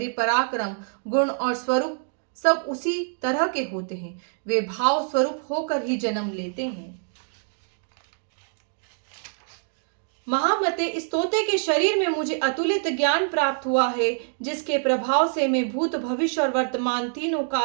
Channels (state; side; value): silent; left; digital silence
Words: पराक्रम, गुण और स्वरूप सब उसी तरह के होते हैं। वे भाव स्वरूप होकर ही जन्म लेते हैं। महामते, इस तोते के शरीर में मुझे अतुलित ज्ञान प्राप्त हुआ है, जिसके प्रभाव से मैं भूत, भविष्य और वर्तमान तीनों